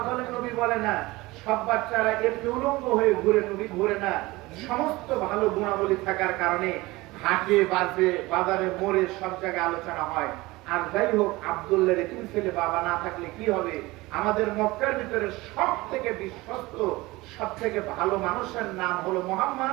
বলে, নবী বলে না। সব বাচ্চারা এমনি উলঙ্গ হয়ে ঘুরে, নবী ঘুরে না। সমস্ত ভালো গুণাবলী থাকার কারণে হাটে বাজারে মোড়ে সব জায়গায় আলোচনা হয়। আর যাই হোক, আব্দুল্লাহর একজন ছেলে বাবা না থাকলে কি হবে? আমাদের মক্কার ভিতরে সব থেকে বিশ্বস্ত, সব থেকে ভালো মানুষের নাম হলো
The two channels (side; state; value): left; quieter; 20.9 dB